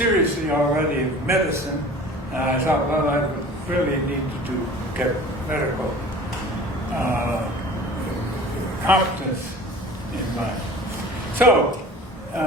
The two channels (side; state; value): both; normal; correlation 0.43